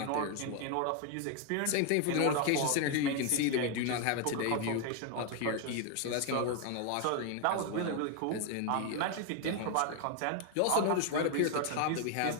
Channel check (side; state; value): both; different; correlation 0.01